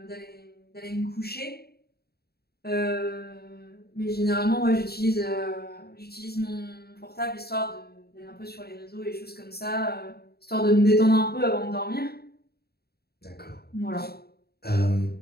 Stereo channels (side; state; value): right; late; 0.46 ms